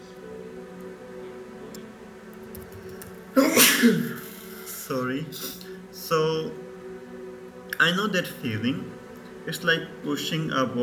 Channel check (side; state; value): both; identical; correlation 1.00